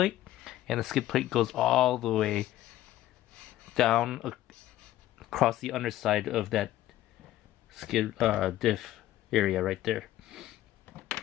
and the skid plate goes all the way down across the underside of that skid diff area right there.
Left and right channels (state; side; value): quieter; right; 14.2 dB